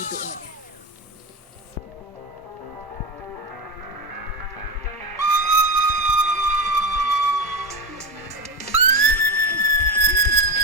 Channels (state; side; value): normal; both; correlation 0.17